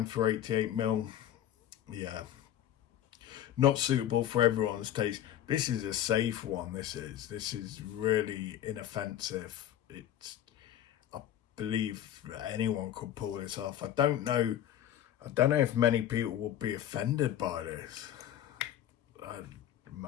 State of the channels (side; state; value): right; quieter; 11.2 dB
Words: for 88ml. Yeah, not suitable for everyone's taste. This is a safe one. This is really inoffensive. I believe anyone could pull this off. I don't know if many people will be offended by this. I